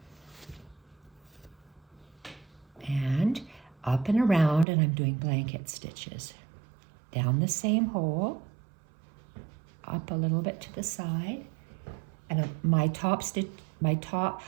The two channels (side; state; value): left; drops out; at 4.7 s